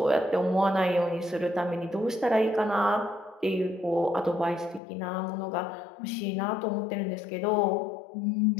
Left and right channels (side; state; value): right; drops out; at 4.8 s